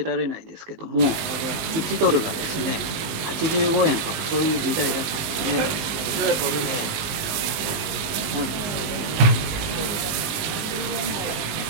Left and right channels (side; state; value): left; late; 19 ms